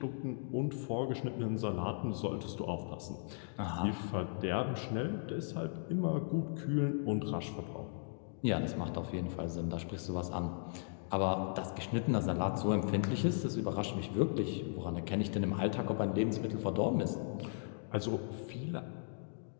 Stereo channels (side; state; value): right; silent; digital silence